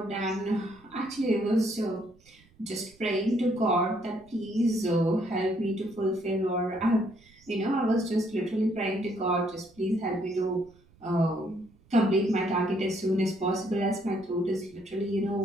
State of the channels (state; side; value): noise; right; rumble, 29 dB below the sound